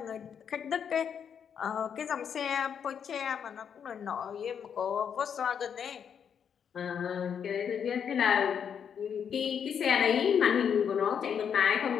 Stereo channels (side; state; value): right; quieter; 7.7 dB